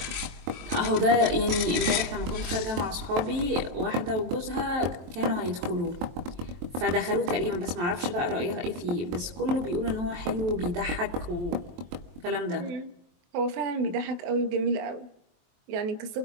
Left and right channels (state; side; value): late; left; 23 ms